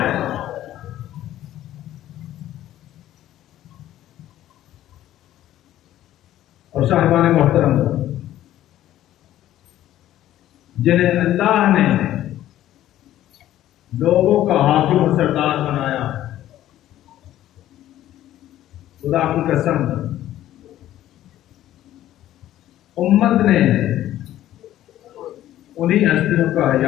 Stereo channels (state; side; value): quieter; right; 13.2 dB